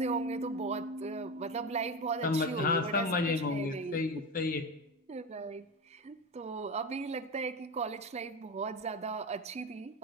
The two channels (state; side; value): normal; both; correlation 0.21